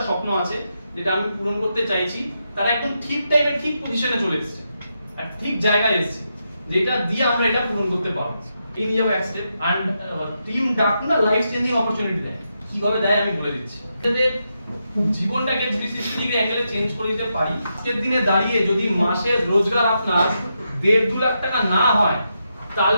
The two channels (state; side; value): inverted; both; correlation -0.84